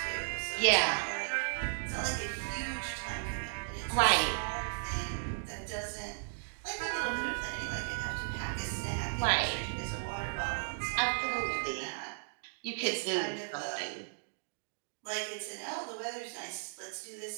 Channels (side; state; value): left; silent; digital silence